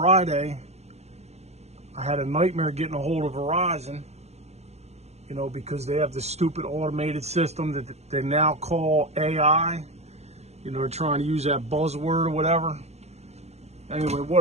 I had a nightmare getting a hold of Verizon, you know, because they have this stupid automated system that they now call AI. You know, they're trying to use that buzzword or whatever. Anyway,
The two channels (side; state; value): left; late; 0.31 ms